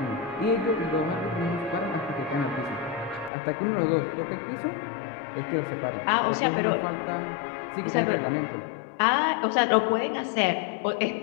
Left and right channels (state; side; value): drops out; right; at 3.3 s